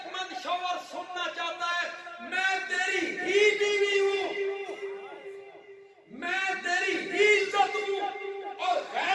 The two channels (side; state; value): both; identical; correlation 1.00